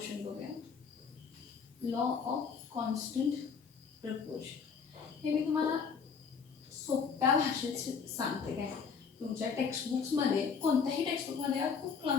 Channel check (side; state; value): right; quieter; 6.0 dB